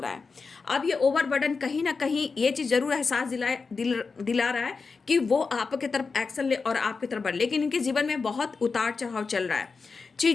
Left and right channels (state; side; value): quieter; right; 4.7 dB